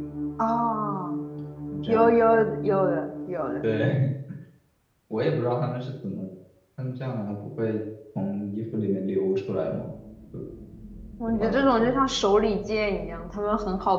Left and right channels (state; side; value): identical; both; correlation 1.00